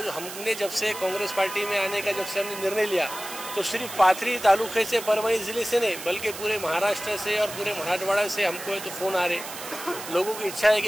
हमने जब से कांग्रेस पार्टी में आने का जब से हमने निर्णय लिया, तो सिर्फ पाथरी तालुके से, परभणी ज़िले से नहीं, बल्कि पूरे महाराष्ट्र से और पूरे मराठवाड़ा से हमको है तो फ़ोन आ रहे। लोगों की इच्छा है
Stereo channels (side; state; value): right; noise; hiss, 10 dB below the sound